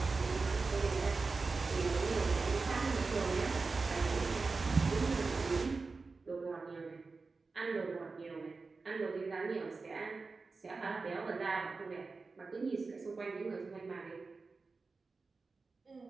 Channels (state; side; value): quieter; left; 4.1 dB